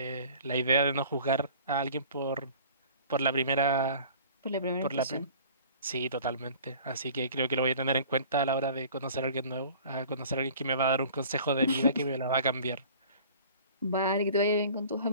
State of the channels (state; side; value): inverted; both; correlation -0.47